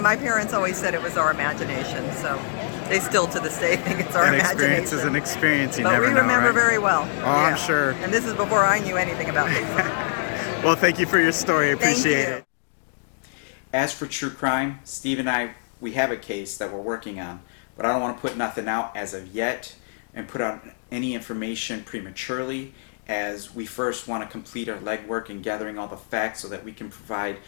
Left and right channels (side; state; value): right; silent; digital silence